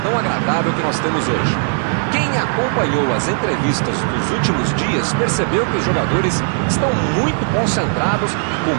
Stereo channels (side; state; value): left; silent; 65 dB below the other